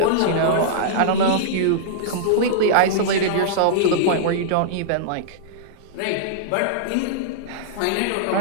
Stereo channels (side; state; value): both; different; correlation -0.02